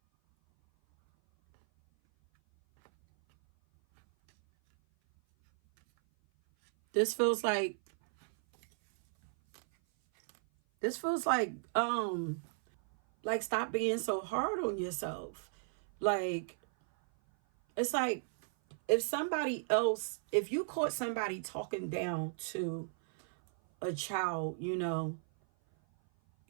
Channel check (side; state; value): left; silent; 55 dB below the other